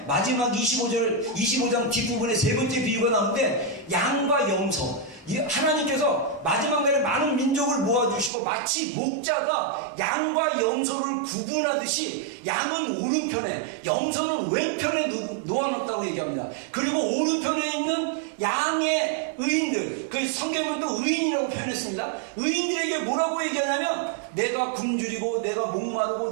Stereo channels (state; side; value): drops out; left; at 8.3 s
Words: 마지막 25장 뒷부분에 세 번째 비유가 나오는데 양과 염소. 하나님께서 마지막 날에 많은 민족을 모아주시고 마치 목자가 양과 염소를 구분하듯이 양은 오른편에, 염소는 왼편에 놓아놓았다고 얘기합니다. 그리고 오른편에 있는 양의 의인들, 그 성경은 또 의인이라고 표현했습니다. 의인들에게 뭐라고 얘기하냐면 내가 굶주리고 내가 목마르고